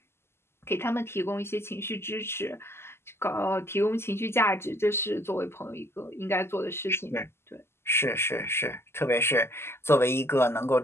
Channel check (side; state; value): right; late; 0.12 ms